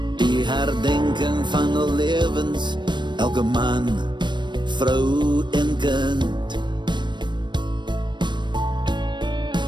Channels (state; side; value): late; left; 0.22 ms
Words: Die herdenking van al lewens, elke man, vrou en kind.